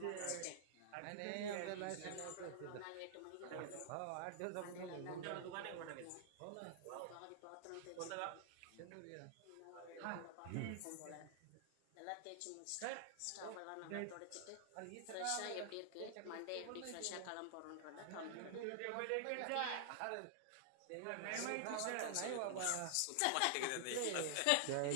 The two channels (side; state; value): both; different; correlation -0.01